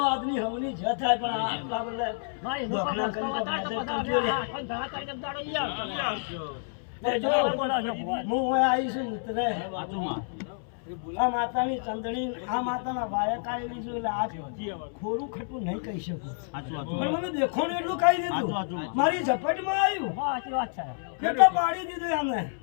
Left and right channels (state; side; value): silent; right; 59 dB below the other